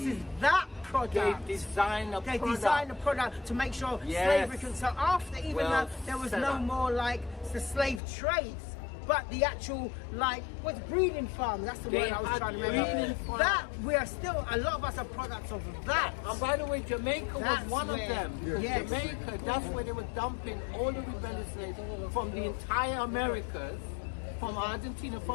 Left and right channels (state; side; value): drops out; right; at 8.0 s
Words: is that product. They design a product to make sure slavery can. So after even though there was no more like the slave trades, but the actual like what's breeding farms, that's the word I was trying to remember. That we are still, a lot of us are products of that. And by the way, Jamaica was one of them. Yes. Jamaica, that's where they were dumping all the rebellious slaves from the entire Americas, from Argentina,